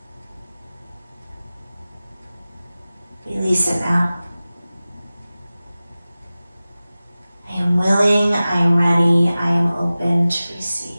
Release it now. I am willing, I am ready, I am open to receive.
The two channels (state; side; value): inverted; both; correlation -0.97